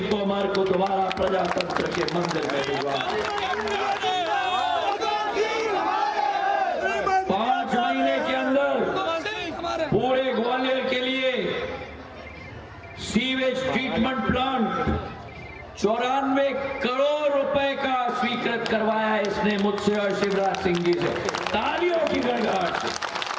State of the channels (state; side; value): identical; both; correlation 1.00